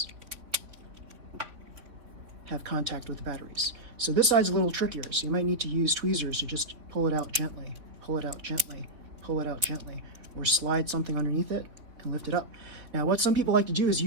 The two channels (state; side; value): late; left; 3.6 ms